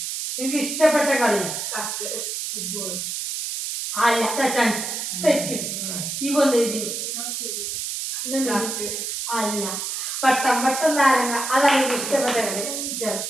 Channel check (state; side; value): noise; right; hiss, 4 dB below the sound